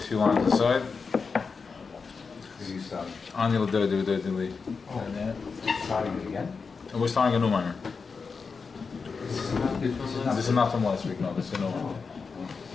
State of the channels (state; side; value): quieter; right; 5.0 dB